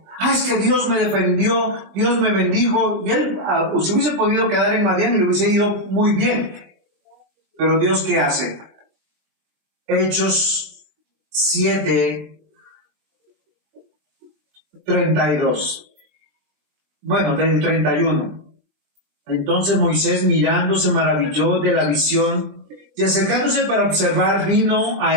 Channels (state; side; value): late; left; 20 ms